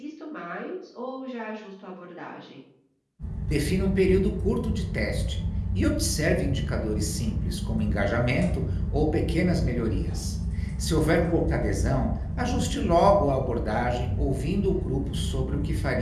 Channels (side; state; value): both; identical; correlation 1.00